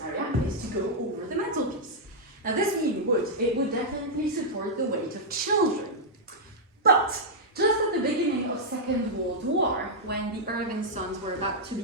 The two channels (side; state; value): both; normal; correlation -0.07